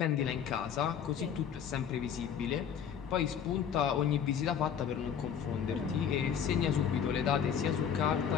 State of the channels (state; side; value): quieter; right; 8.1 dB